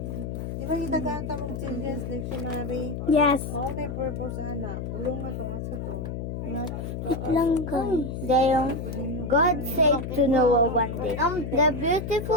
Di ba itaganta mong children's dictionary? Yes. Mao na yung purpose ana. Bulong na to asa to. Wait lang guys. Dayong God said to Noah one day, the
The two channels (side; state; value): left; noise; hum, 5 dB below the sound